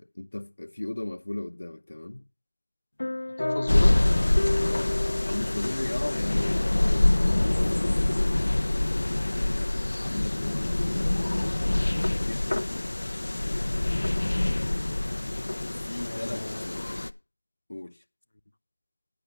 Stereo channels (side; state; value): both; inverted; correlation -1.00